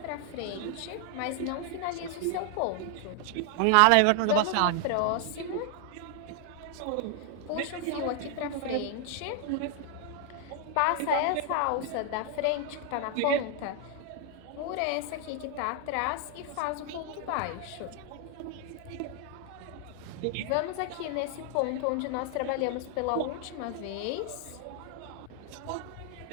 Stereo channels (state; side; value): different; both; correlation 0.00